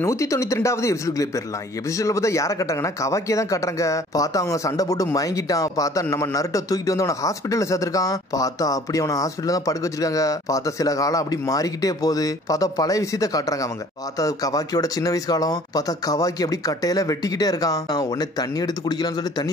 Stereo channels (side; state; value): both; normal; correlation 0.52